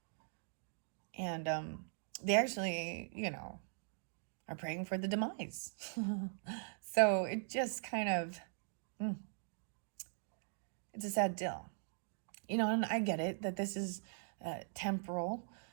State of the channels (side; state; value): left; silent; digital silence